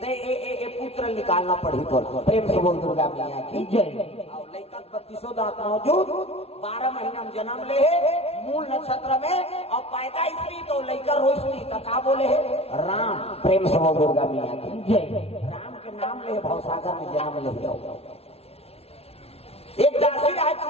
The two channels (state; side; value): late; right; 0.30 ms